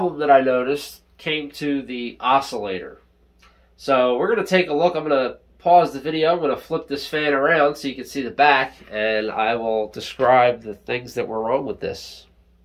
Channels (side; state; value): both; identical; correlation 1.00